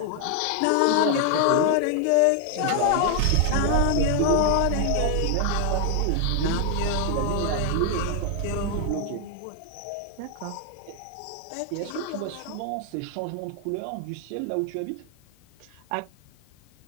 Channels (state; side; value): different; both; correlation 0.00